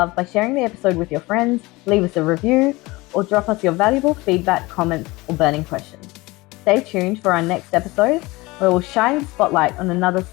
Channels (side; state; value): right; quieter; 21.9 dB